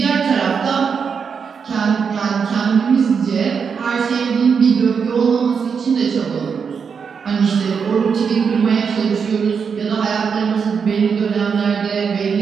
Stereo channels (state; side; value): quieter; left; 6.2 dB